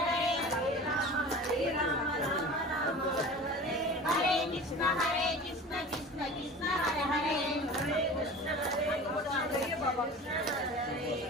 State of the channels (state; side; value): normal; both; correlation 0.37